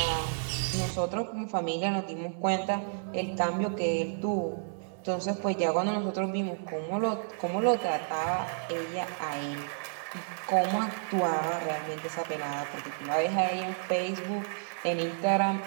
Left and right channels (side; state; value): left; silent; digital silence